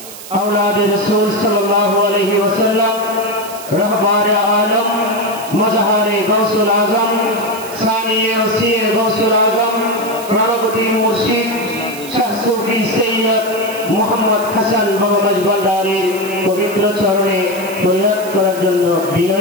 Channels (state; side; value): noise; right; hiss, 14 dB below the sound